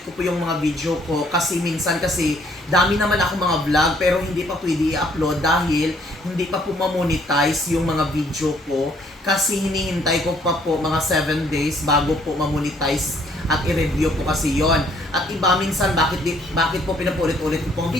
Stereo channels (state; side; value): normal; both; correlation 0.64